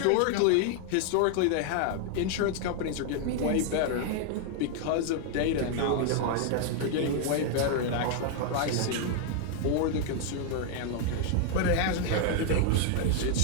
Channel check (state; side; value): different; both; correlation 0.00